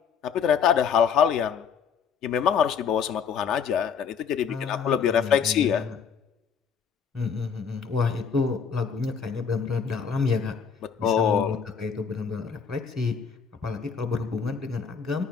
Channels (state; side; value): quieter; right; 6.7 dB